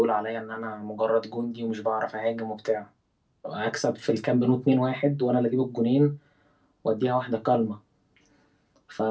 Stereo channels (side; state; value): both; identical; correlation 1.00